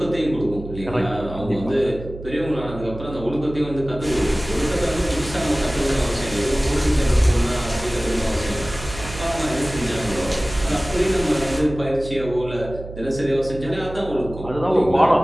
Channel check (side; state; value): right; noise; hum, 12 dB below the sound